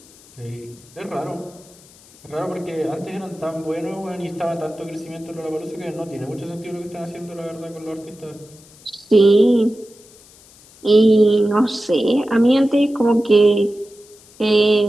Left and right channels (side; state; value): left; noise; hiss, 25 dB below the sound